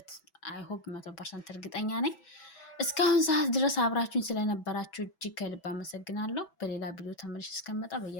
አይሆፕ 100% እርግጠኛ ነኝ። እስካሁን ሰዓት ድረስ አብራችሁኝ ስለነበራችሁ እጅግ ከልብ አመሰግናለሁ። በሌላ ቪዲዮ ተመልሼ እስከመጣ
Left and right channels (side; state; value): right; late; 6.1 ms